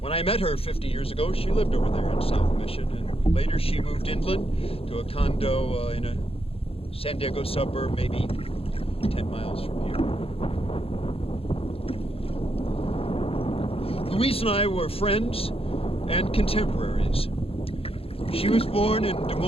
When I met her 50 years ago, she lived over there in South Mission, and later she moved inland to a condo in a San Diego suburb, maybe 10 miles from here. Louise and I were friends and contemporaries. She was born in Des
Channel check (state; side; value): late; right; 0.28 ms